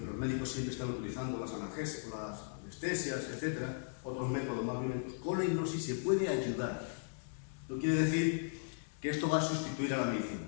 los médicos siempre están utilizando las analgesias, las anestesias, etc., otros métodos más violentos, con la hipnosis se puede ayudar. No quiere decir que esto va a sustituir a la medicina,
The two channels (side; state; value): right; silent; digital silence